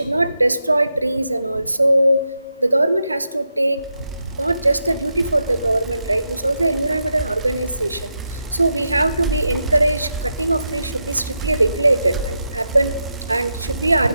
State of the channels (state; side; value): inverted; both; correlation -0.85